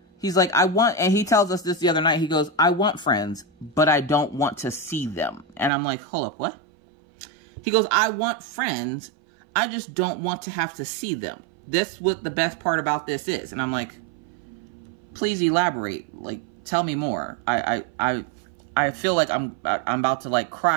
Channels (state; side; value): drops out; left; at 5.7 s